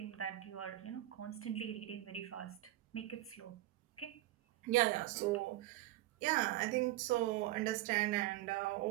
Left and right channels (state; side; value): quieter; left; 15.6 dB